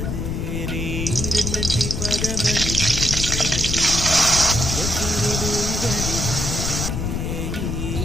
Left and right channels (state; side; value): noise; left; rumble, 2 dB below the sound